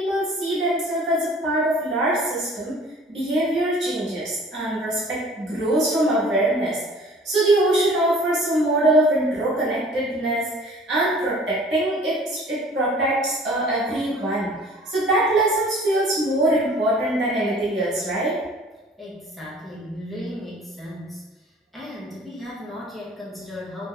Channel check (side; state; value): both; normal; correlation 0.50